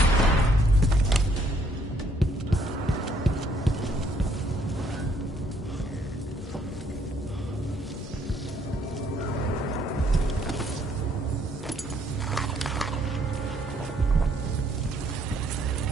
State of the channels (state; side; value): normal; both; correlation 0.67